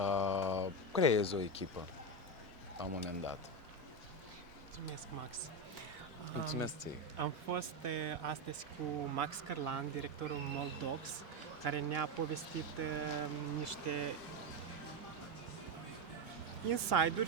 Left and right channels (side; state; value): both; normal; correlation 0.12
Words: creezi o echipă la un moment dat. Mulțumesc, Max. Mulțumesc ție. Am fost astăzi cu Max Cărlan, directorul Moldox, care ne-a povestit niște